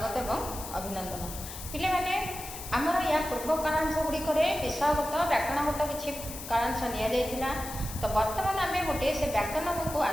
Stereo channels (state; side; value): noise; left; hiss, 11 dB below the sound